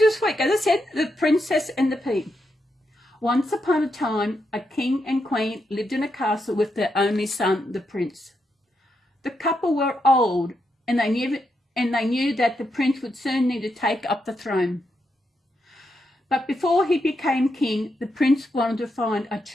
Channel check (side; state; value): both; normal; correlation 0.83